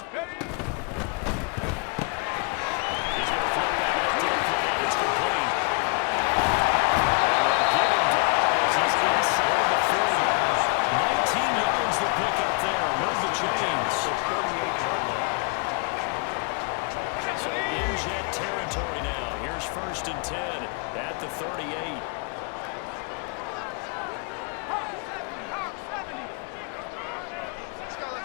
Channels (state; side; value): quieter; right; 33.2 dB